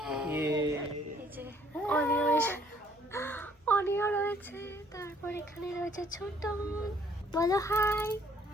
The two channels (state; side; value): normal; both; correlation 0.62